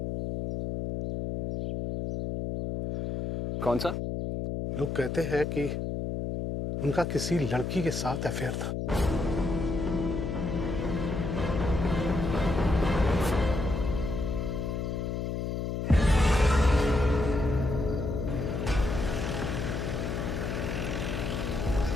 कौन सा? लोग कहते हैं कि उनका किसी लड़की के साथ अफेयर था।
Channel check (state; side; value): noise; left; hum, 2 dB below the sound